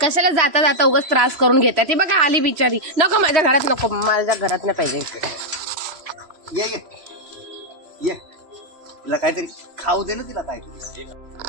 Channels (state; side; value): late; left; 3.0 ms